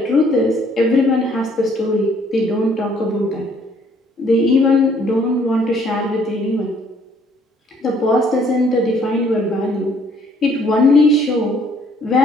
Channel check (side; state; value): both; normal; correlation 0.63